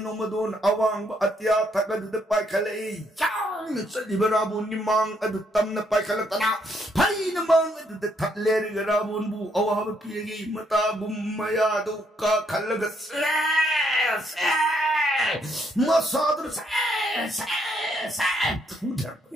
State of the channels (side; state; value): both; normal; correlation 0.72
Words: ꯅꯣꯡꯃꯗꯣꯟ ꯑꯋꯥꯡꯕ ꯑꯇꯤꯌꯥ ꯊꯛꯑꯗꯨꯗ ꯄꯥꯏꯈꯠꯂꯛꯏ ꯌꯥꯡꯅ ꯆꯠꯂꯤꯕ ꯔꯥꯕꯣꯟꯒꯤ ꯃꯥꯡ ꯑꯗꯨ ꯇꯝꯅ ꯄꯥꯏꯈꯠꯂꯛꯇꯅ ꯐꯩꯅ ꯃꯥꯡ ꯑꯗꯨꯗ ꯊꯠꯂꯦꯔꯒ ꯔꯥꯕꯣꯟꯕꯨ ꯑꯋꯥꯕ ꯄꯤꯔꯒꯤ ꯃꯇꯥꯒꯨꯝ ꯃꯌꯥꯗꯨ ꯀꯥꯈꯠꯂꯒ ꯃꯁꯥꯗꯨꯅ